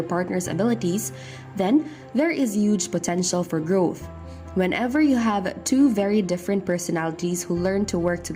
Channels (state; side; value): identical; both; correlation 1.00